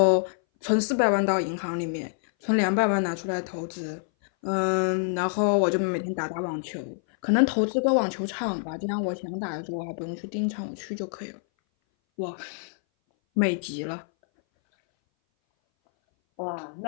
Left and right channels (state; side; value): silent; right; 59 dB below the other